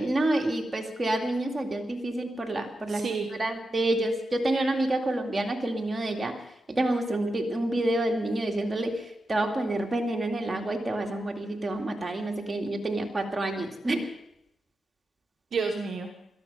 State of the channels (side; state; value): both; normal; correlation 0.89